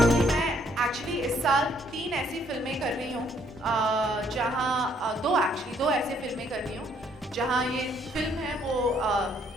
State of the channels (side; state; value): both; normal; correlation 0.66